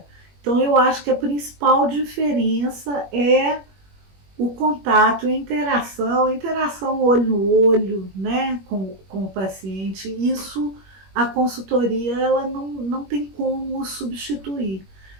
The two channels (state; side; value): late; left; 21 ms